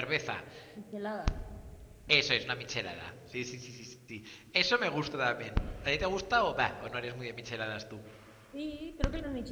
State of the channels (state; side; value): identical; both; correlation 1.00